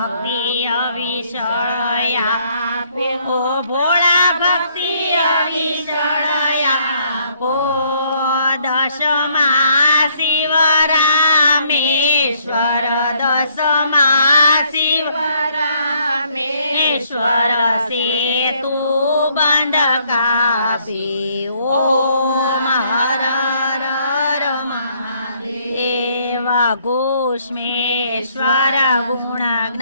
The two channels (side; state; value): both; inverted; correlation -0.67